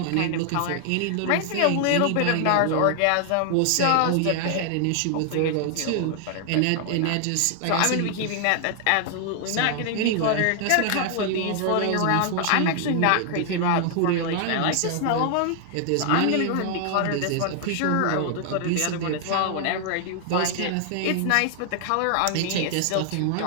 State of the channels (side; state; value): both; different; correlation 0.00